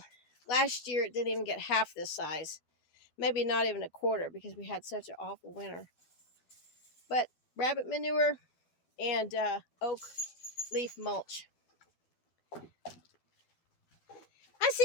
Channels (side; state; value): right; late; 12 ms